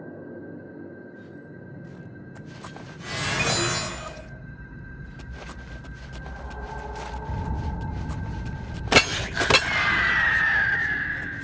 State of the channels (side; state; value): both; identical; correlation 1.00